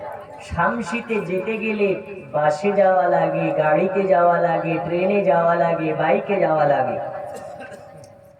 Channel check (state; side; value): identical; both; correlation 1.00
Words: শামসিতে যেতে গেলে বাসে যাওয়া লাগে, গাড়িতে যাওয়া লাগে, ট্রেনে যাওয়া লাগে, বাইকে যাওয়া লাগে।